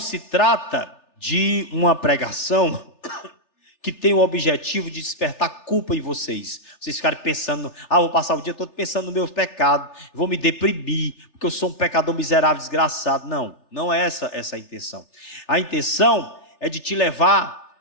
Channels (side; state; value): right; late; 3.4 ms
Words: trata de uma pregação que tem o objetivo de despertar culpa em vocês. Vocês ficarem pensando, vou passar o dia todo pensando no meu pecado, vou me deprimir, porque eu sou um pecador miserável, desgraçado. Não é essa a intenção. A intenção é de te levar